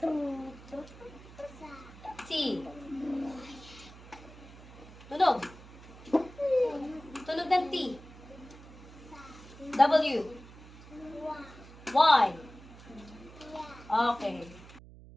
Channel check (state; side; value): noise; right; hum, 18 dB below the sound